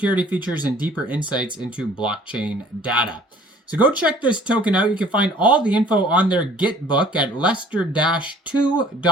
features and deeper insights into blockchain data. So go check this token out. You can find all the info on their Gitbook at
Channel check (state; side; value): normal; both; correlation 0.53